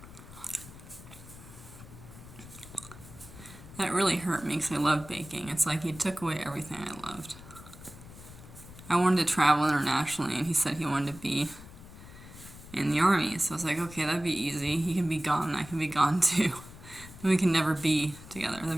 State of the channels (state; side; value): noise; left; rumble, 17 dB below the sound